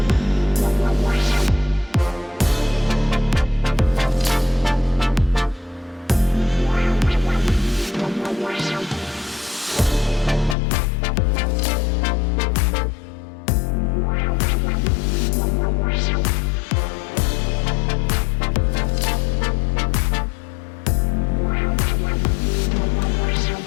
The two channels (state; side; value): drops out; right; at 10.6 s